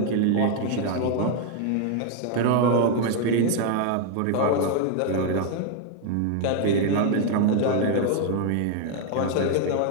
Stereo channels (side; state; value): both; different; correlation 0.00